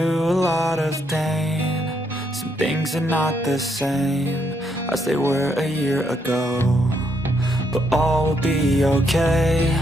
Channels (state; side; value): normal; both; correlation 0.75